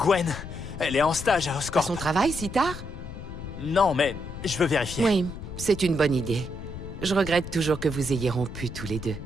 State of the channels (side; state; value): left; noise; rumble, 10 dB below the sound